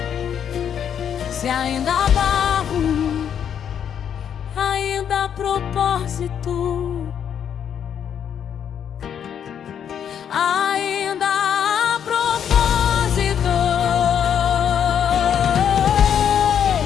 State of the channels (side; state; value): right; quieter; 8.6 dB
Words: Se ainda há barro, ainda há propósito, ainda há propósito,